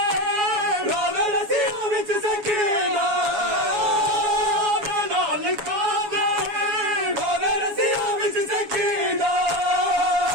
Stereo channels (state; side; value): late; left; 7.2 ms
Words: रोवे रसियां विच सकीना दे नाल काने रोवे रसियां विच सकीना